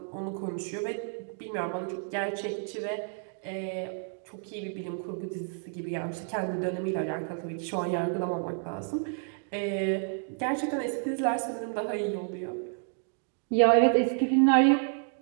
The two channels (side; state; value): left; silent; 58 dB below the other